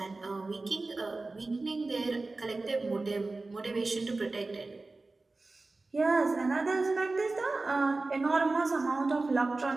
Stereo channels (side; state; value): left; quieter; 3.4 dB